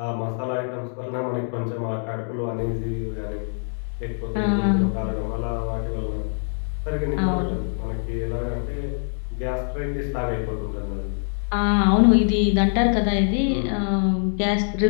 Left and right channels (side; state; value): right; silent; 63 dB below the other